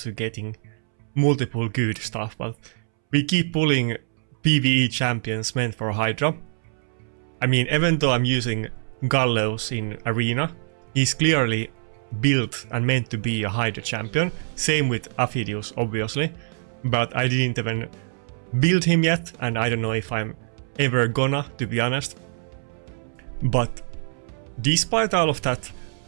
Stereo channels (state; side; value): silent; left; 62 dB below the other